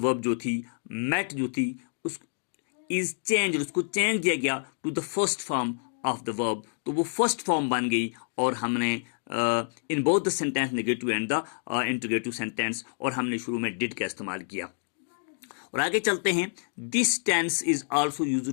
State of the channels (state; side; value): silent; right; digital silence